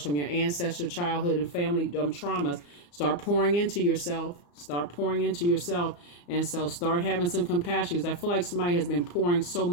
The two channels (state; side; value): late; right; 34 ms